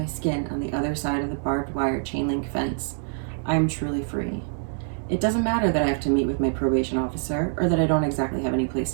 skin on the other side of the barbed wire chain link fence, I am truly free. It doesn't matter that I have to meet with my probation officer or that I don't exactly have any place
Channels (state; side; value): silent; left; digital silence